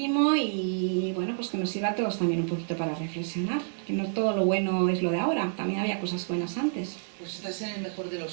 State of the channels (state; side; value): silent; left; 59 dB below the other